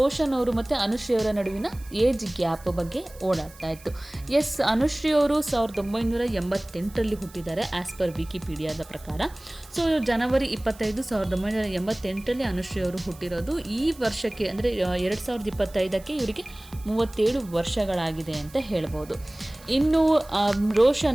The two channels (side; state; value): right; noise; hiss, 22 dB below the sound